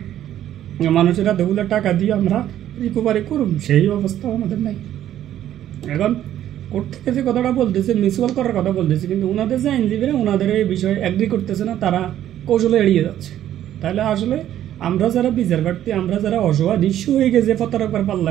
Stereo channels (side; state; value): left; quieter; 11.7 dB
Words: মানুষেরা দেগুলো টাকা দিয়ে আমরা রিকভারি করুন, সেই অবস্থা আমাদের নাই। এখন কোর্ট থেকে যে কথাটা বলতেছে মিউচুয়াল করার কথা বলতেছে, কিন্তু ওনাদের যে আইনজীবীরা ওনাদের এই বিষয়ে অ্যাগ্রি করতেছে না, তারা কৌশলে এড়িয়ে যাচ্ছে। তাহলে আসলে আমরা যারা বিচার প্রার্থী, আমরা যারা অসহায় নিঃস্ব হয়ে গেছে প্রতারকের